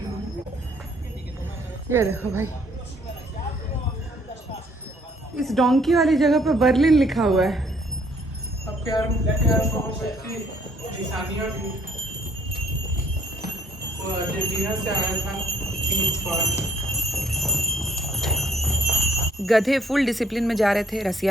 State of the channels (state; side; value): normal; both; correlation 0.64